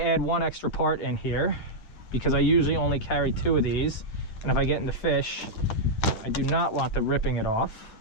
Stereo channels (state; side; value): late; right; 9.5 ms